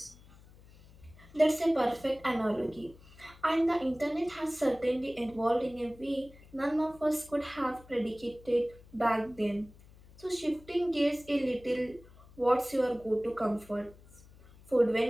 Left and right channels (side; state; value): left; noise; hum, 23 dB below the sound